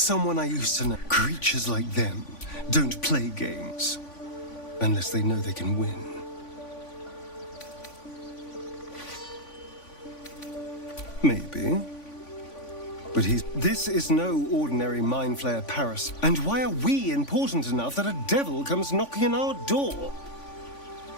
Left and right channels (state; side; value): late; right; 3.5 ms